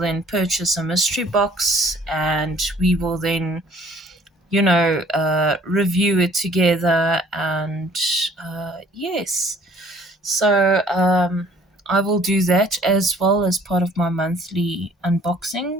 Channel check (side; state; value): both; normal; correlation 0.56